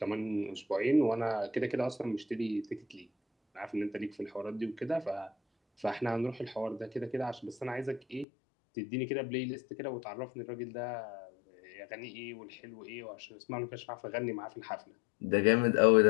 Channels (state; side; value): drops out; right; at 8.2 s